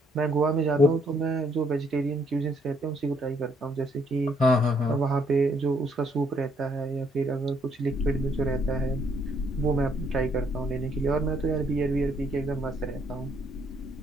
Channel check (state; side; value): normal; both; correlation 0.69